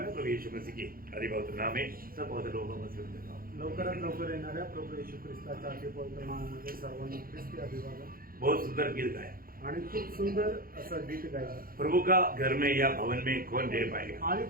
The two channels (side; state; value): left; late; 0.42 ms